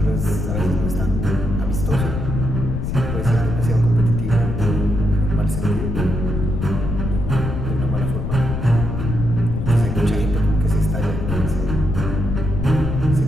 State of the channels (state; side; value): noise; left; rumble, 3 dB below the sound